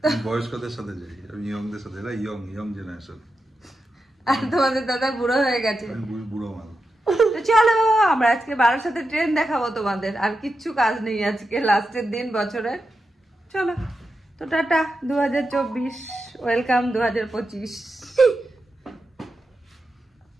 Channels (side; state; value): both; normal; correlation 0.89